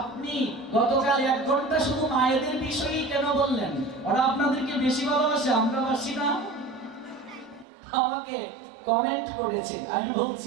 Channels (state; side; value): drops out; left; at 7.7 s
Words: গতকাল 1 ঘন্টা শুধু মায়েদের বিষয়েই কেন বললেন? ওরা আপনাদেরকে বেশি ভালোবাসে, আমরা বাসি না? আমাকে কমেন্ট করেছে। আমি